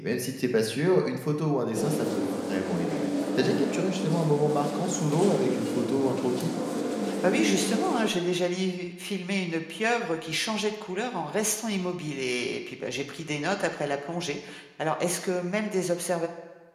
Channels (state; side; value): identical; both; correlation 1.00